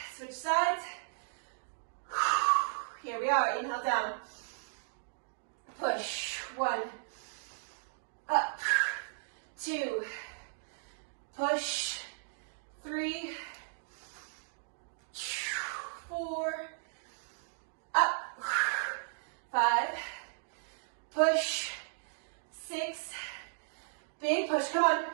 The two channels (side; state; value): left; silent; digital silence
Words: Switch sides. Here we are. Inhale down. Push. 1, up, 2, push, 3, 4, up, 5, push, 6, big push, come on,